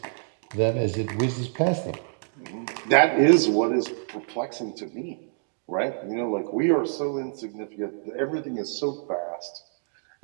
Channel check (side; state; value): left; silent; digital silence